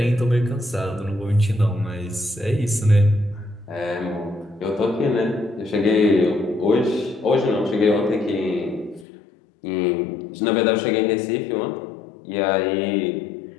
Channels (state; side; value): drops out; right; at 9.1 s